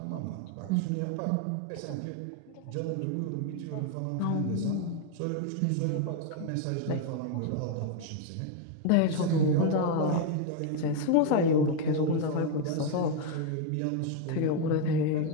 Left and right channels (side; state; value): both; different; correlation 0.01